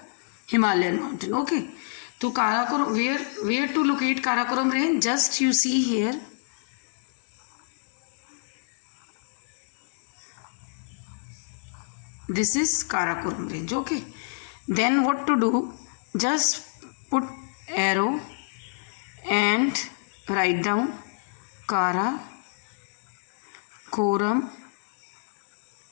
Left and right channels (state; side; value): silent; right; digital silence